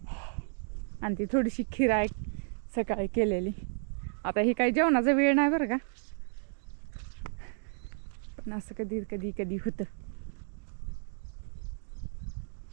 आणि ती थोडीशी खीर आहे सकाळी केलेली. आता ही काही जेवणाचा वेळ नाही बरं का, पण असं कधी कधी कधी होतं.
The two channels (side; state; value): left; silent; digital silence